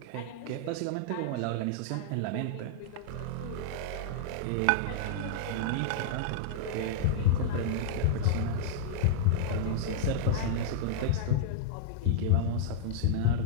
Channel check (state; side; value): different; both; correlation -0.01